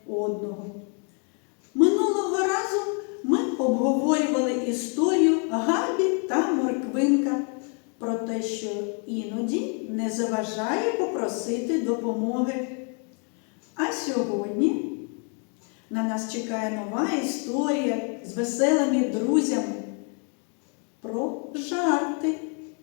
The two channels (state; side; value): quieter; right; 39.2 dB